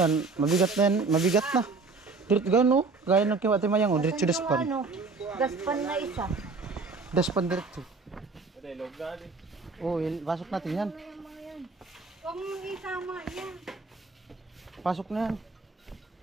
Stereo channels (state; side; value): quieter; left; 4.1 dB